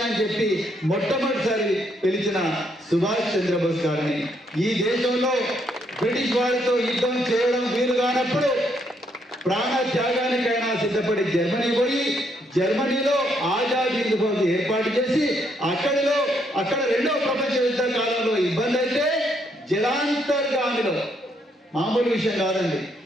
అని చెప్పి మొట్టమొదటిసారి పిలిచిన సుభాష్ చంద్రబోస్ గారిని, ఈ దేశంలో బ్రిటిష్ వారితో యుద్ధం చేయడం వీలు కానప్పుడు ప్రాణ త్యాగానికైనా సిద్ధపడి జర్మనీ పోయి జర్మనీలో ఆజాద్ హింద్ ఫౌజ్ ఏర్పాటు చేసి అక్కడ రెండవ ప్రపంచ యుద్ధ కాలంలో ఇబ్బంది అయితే జలాంతర్గామిలో, మామూలు విషయం కాదండి,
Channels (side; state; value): both; normal; correlation 0.73